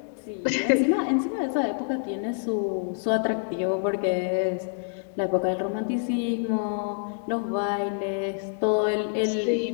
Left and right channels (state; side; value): silent; right; digital silence